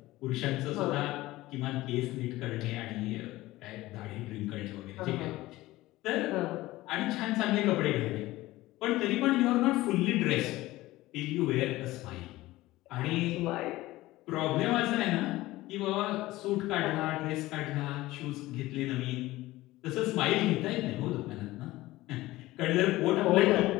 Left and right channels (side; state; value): right; quieter; 17.8 dB